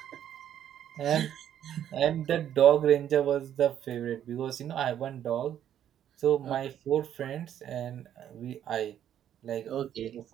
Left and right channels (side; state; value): left; quieter; 10.4 dB